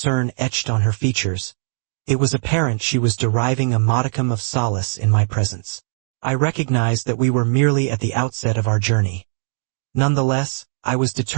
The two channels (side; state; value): left; silent; digital silence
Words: etched on her features, it was apparent she was deriving a modicum of solace in my presence. I recognized that we were merely at the outset of our journey. Nonetheless, I was